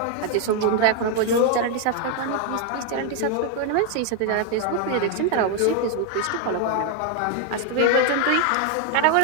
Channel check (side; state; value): both; different; correlation 0.01